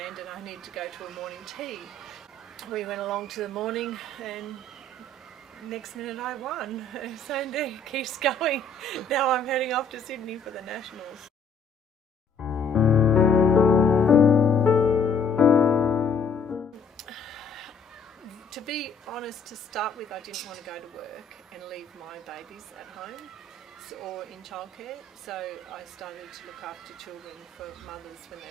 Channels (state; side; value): quieter; right; 3.8 dB